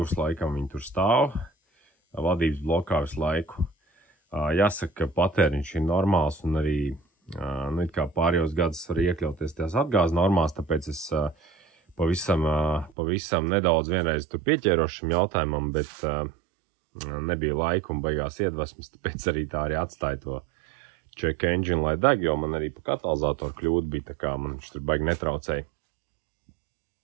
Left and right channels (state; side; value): drops out; left; at 12.9 s